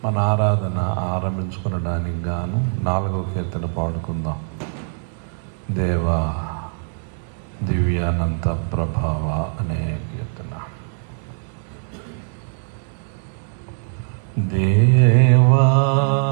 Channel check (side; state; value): left; silent; 59 dB below the other